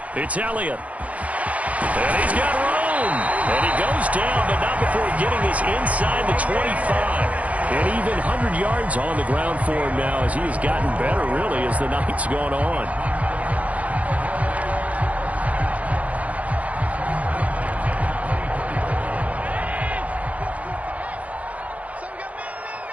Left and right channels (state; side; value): late; left; 0.067 ms